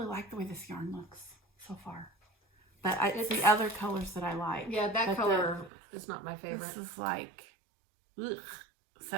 like the way this yarn looks so far, but it's the other colors that I like. Yeah, that color is not my favorite. This is like, ugh.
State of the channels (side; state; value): left; drops out; at 5.7 s